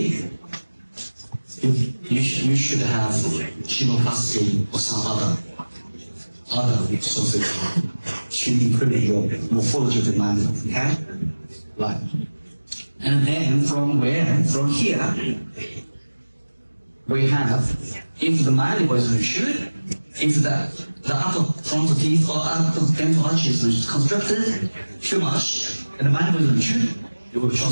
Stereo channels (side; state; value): both; inverted; correlation -1.00